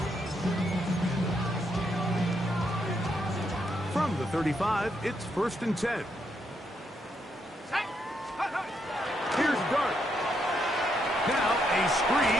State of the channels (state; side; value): normal; both; correlation 0.78